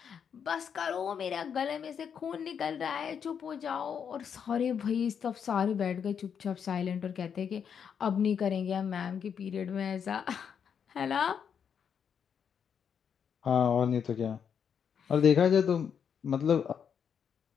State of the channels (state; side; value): quieter; right; 7.4 dB